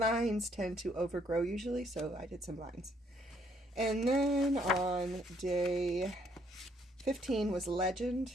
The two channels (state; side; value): normal; both; correlation 0.68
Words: tend to overgrow usually, so I did some vines. And then on day 15 was legend.